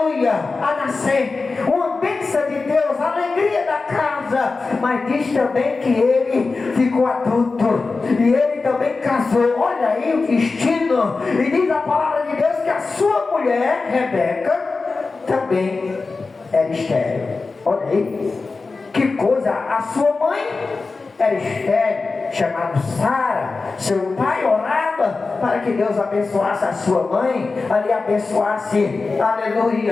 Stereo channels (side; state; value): right; quieter; 4.0 dB